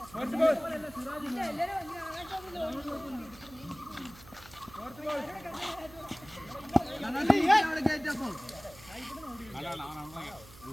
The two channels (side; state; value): right; noise; hum, 20 dB below the sound